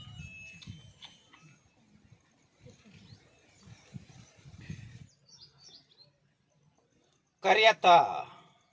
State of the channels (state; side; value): identical; both; correlation 1.00